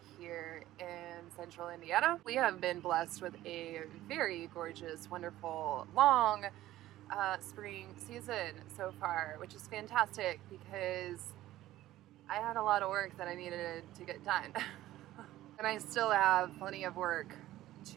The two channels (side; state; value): left; quieter; 14.9 dB